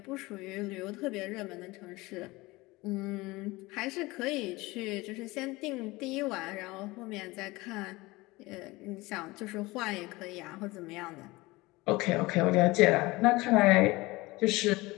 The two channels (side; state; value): right; quieter; 21.4 dB